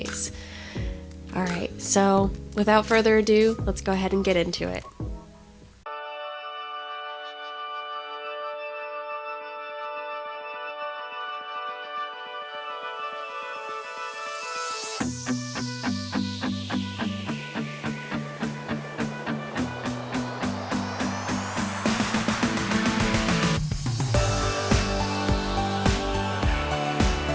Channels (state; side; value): identical; both; correlation 1.00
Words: Alright, so without further ado, let's go ahead and get into it.